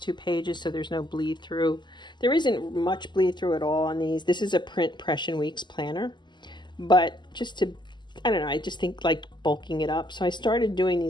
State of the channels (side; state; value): right; late; 0.21 ms